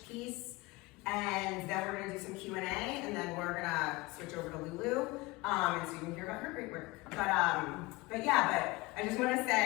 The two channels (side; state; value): right; quieter; 22.6 dB